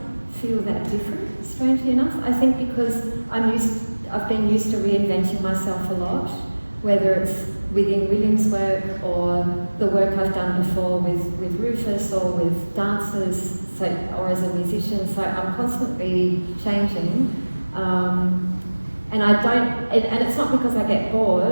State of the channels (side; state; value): both; inverted; correlation -1.00